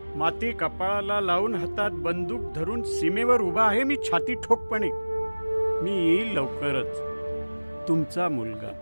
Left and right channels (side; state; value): both; inverted; correlation -1.00